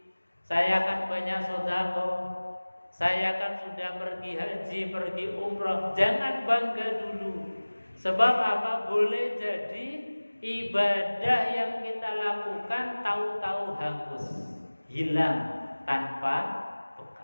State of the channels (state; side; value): inverted; both; correlation -1.00